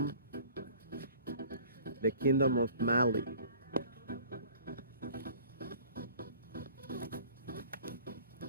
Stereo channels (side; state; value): both; inverted; correlation -0.48